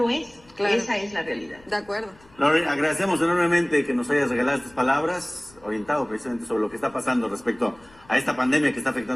es. Claro. Esa es la realidad. De acuerdo. Lore, agradecemos enormemente que nos hayas regalado estas palabras, orientado precisamente sobre lo que está pasando respecto a esta pandemia que está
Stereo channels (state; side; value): noise; left; rumble, 28 dB below the sound